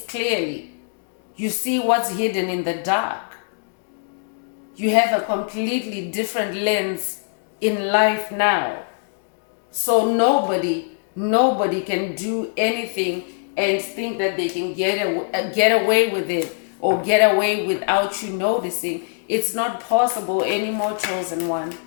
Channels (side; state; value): right; silent; digital silence